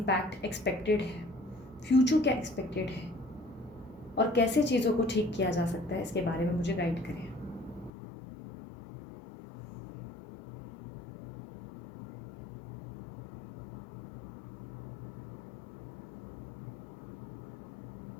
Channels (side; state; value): right; drops out; at 7.9 s